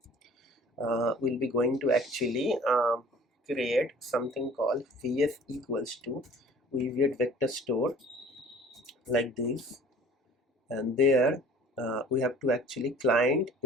we'll be going to actually create something called vs equals to weaviate vector store, like this, and there we have to actually client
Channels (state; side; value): normal; both; correlation 0.49